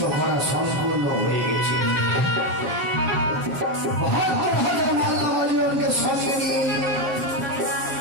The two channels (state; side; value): late; left; 7.1 ms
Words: করা সম্পূর্ণ হয়ে গেছে। মাল্লাবাড়িকে সঙ্গে নিয়ে